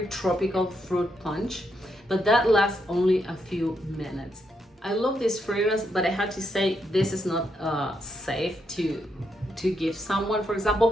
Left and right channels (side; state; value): both; normal; correlation 0.80